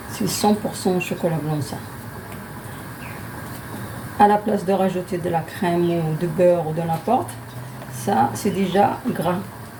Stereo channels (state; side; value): noise; left; hum, 28 dB below the sound